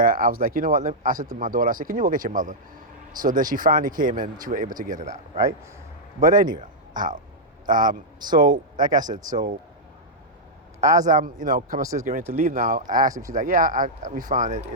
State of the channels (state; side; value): normal; both; correlation -0.07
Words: I was like, what? I said to my daughter, I said, "Can you go get your mother?" So then she finally came and she was able to get it out, right? But anyway, so like I said, so as I'm, coming upstairs getting ready to leave now, I asked her. She's like, "Yeah, we found it.